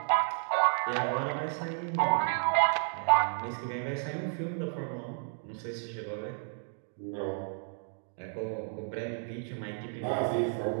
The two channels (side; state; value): left; silent; 56 dB below the other